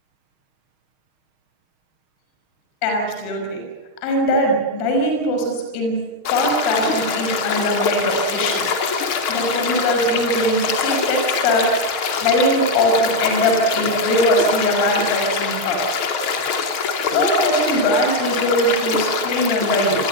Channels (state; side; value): late; right; 6.4 ms